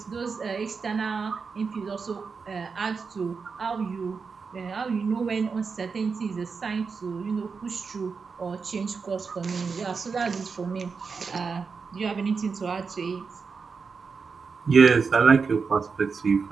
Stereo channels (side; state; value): left; quieter; 5.2 dB